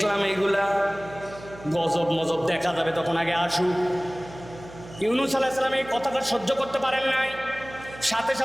এইগুলা, গজব মজব দেখা যাবে তখন, আগে আসুক। ইউনূস আলাইহিস সালাম এই কথাটা সহ্য করতে পারেন নাই, সাথে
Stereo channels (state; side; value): noise; right; hum, 17 dB below the sound